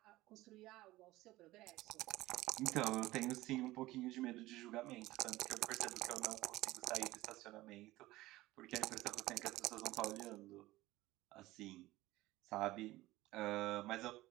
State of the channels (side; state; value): left; quieter; 17.9 dB